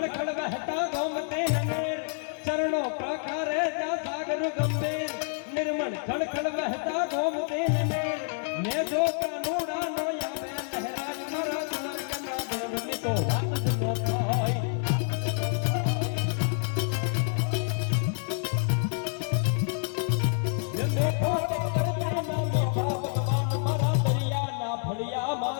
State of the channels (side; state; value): right; silent; 59 dB below the other